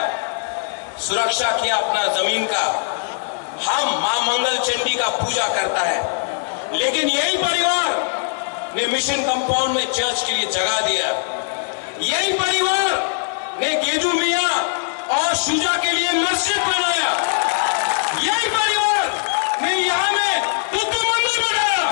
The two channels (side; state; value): right; silent; 65 dB below the other